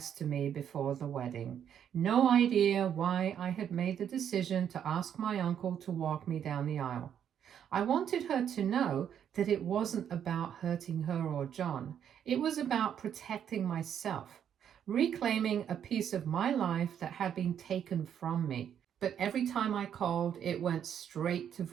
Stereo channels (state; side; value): quieter; left; 9.0 dB